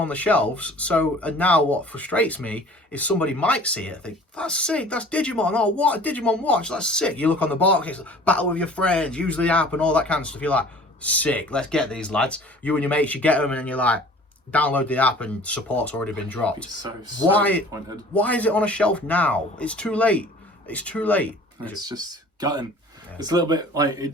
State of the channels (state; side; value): normal; both; correlation 0.47